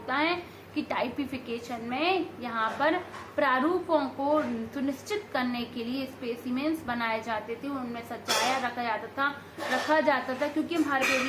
है कि टाइपिफिकेशन में यहाँ पर प्रारूपों को सुनिश्चित करने के लिए स्पेसिमेन्स बनाए जाते थे, उनमें सजाया रखा जाता था क्योंकि हम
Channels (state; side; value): identical; both; correlation 1.00